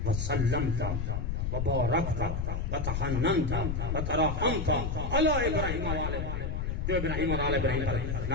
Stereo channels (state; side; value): noise; left; rumble, 1 dB below the sound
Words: وسلمت وبارکت وتحننت وترحمت علی ابراہیم و آل ابراہیم، جو ابراہیم اور آل ابراہیم پر